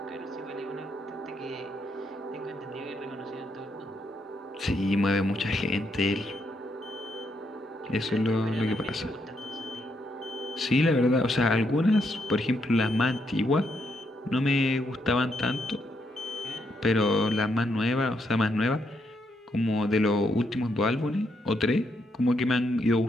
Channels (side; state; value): both; normal; correlation 0.77